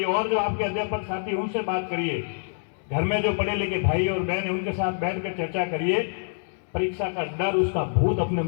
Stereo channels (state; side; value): silent; right; digital silence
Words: और जो आपके अध्यापक साथी उनसे बात करिए। घर में जो पढ़े लिखे भाई और बहन है उनके साथ बैठकर चर्चा करिए। परीक्षा का डर, उसका भूत अपने